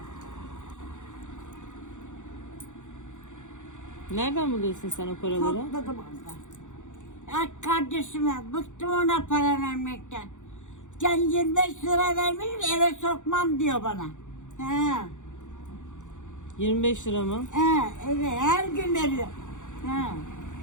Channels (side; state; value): right; late; 0.85 ms